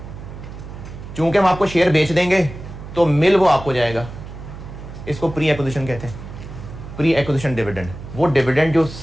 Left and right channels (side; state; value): right; noise; hum, 12 dB below the sound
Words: चूंकि हम आपको शेयर बेच देंगे तो मिल वो आपको जाएगा। इसको प्री एक्विजिशन कहते हैं, प्री एक्विजिशन डिविडेंड। वो डिविडेंड जो